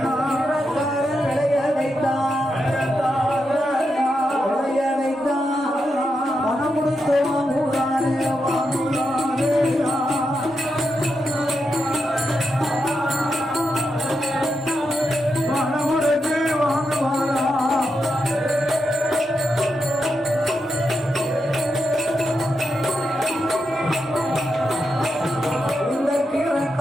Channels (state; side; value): normal; both; correlation 0.85